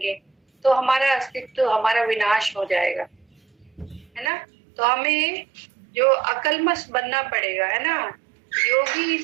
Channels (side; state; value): left; drops out; at 4.3 s